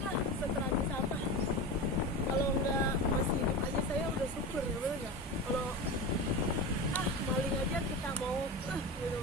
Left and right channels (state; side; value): normal; both; correlation 0.25